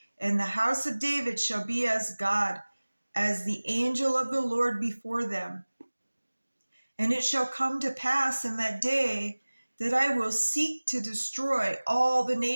and the house of David shall be as God, as the angel of the Lord before them. And it shall come to pass in that day that I will seek to destroy all the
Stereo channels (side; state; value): both; inverted; correlation -1.00